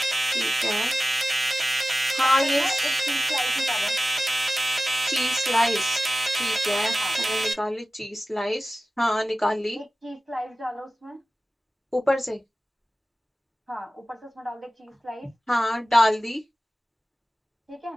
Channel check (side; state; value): both; normal; correlation 0.96